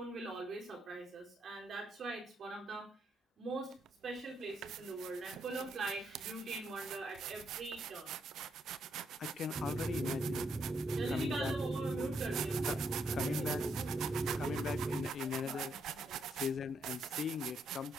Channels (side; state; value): both; normal; correlation 0.76